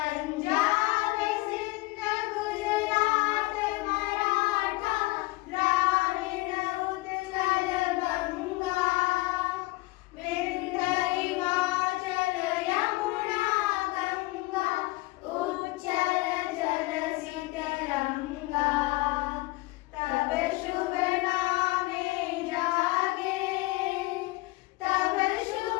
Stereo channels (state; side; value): quieter; right; 21.9 dB